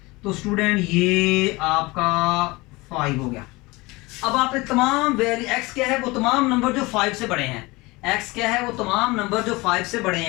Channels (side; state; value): right; quieter; 23.1 dB